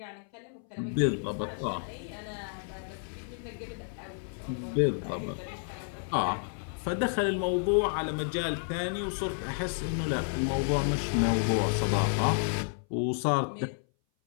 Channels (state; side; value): silent; right; 57 dB below the other